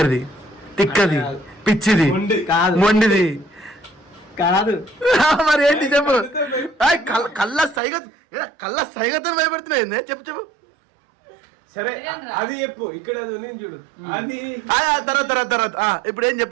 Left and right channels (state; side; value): drops out; left; at 7.8 s